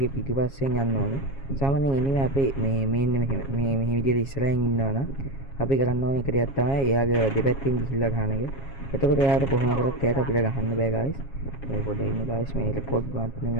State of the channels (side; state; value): right; late; 7.3 ms